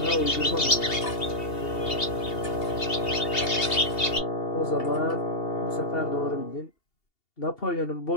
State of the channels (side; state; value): right; late; 2.8 ms